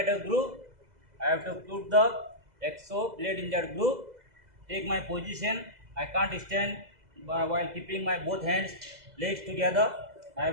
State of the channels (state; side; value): late; left; 2.0 ms